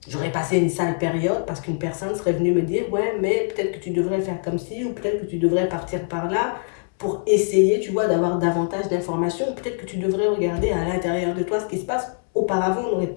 J'aurais passé une sale période parce qu'une personne serait venue me dire, ouais, mais peut-être que tu devrais faire comme ci, ou peut-être que tu devrais partir par là, pour essayer, tu vois, d'avoir davantage d'informations. Peut-être que tu devrais regarder à l'intérieur de toi ce qui se passe. Auparavant, on n'aurait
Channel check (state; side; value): silent; right; 63 dB below the other